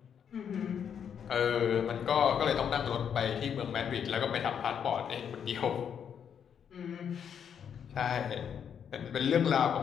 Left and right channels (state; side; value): quieter; right; 8.0 dB